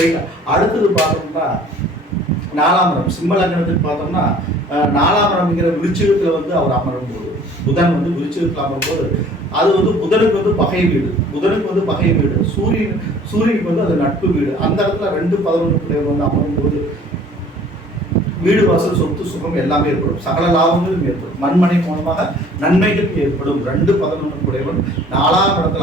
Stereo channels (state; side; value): normal; both; correlation 0.52